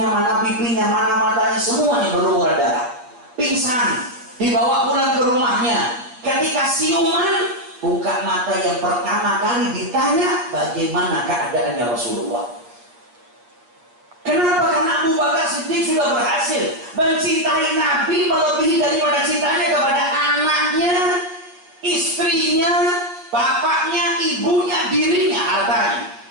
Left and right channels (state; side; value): late; left; 8.3 ms